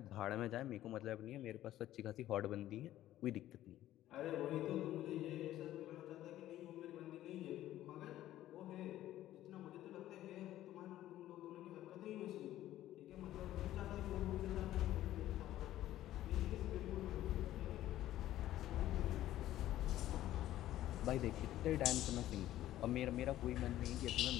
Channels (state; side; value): quieter; right; 13.7 dB